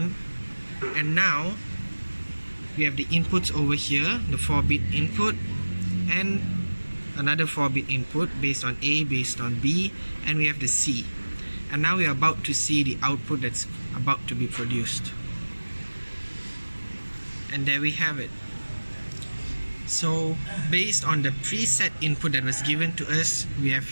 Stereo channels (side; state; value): both; inverted; correlation -1.00